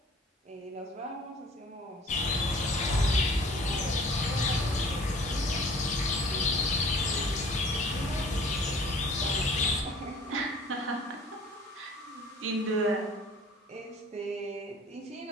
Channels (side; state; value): both; normal; correlation 0.50